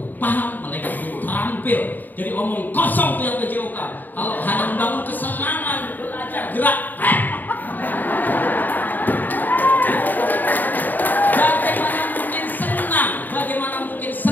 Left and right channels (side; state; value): right; late; 0.087 ms